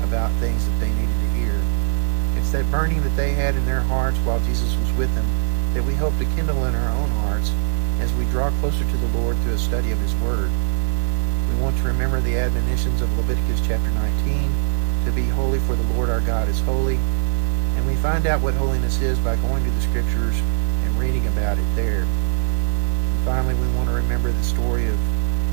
about things that they needed to hear. It's that burning that they had in their hearts while Jesus was with them that we hope to kindle in our own hearts as we draw closer to the Lord through a study of His Word. We want to remember the admonitions of Leviticus chapter 19, to be holy for the Lord our God is holy, and we find out what holiness is by going to the Scriptures and reading about it there. And finally, we want to remember the story of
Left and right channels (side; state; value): left; silent; 63 dB below the other